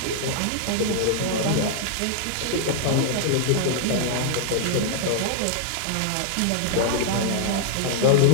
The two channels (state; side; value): different; both; correlation -0.01